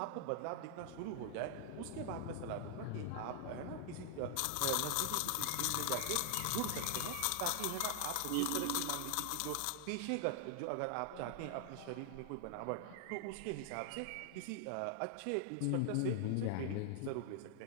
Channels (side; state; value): both; different; correlation 0.00